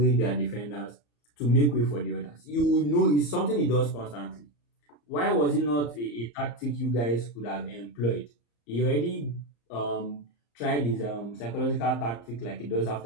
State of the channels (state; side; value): late; right; 34 ms